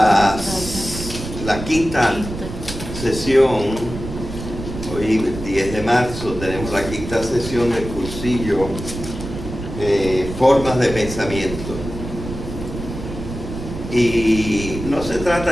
quinta sesión, hoy 10 de marzo tenemos la quinta sesión del cursillo Formas de Pensamiento. Y no se trata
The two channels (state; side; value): noise; right; rumble, 9 dB below the sound